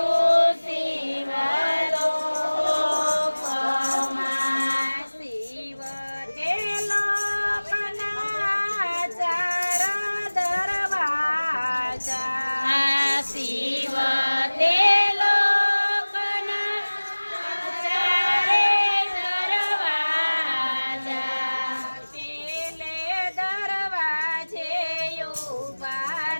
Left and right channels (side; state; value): both; inverted; correlation -1.00